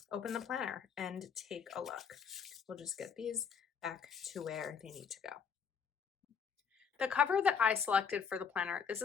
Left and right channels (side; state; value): right; quieter; 6.8 dB